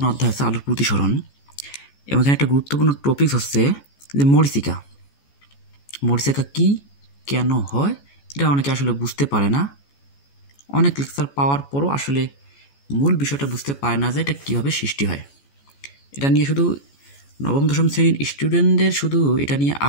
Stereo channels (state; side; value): late; right; 14 ms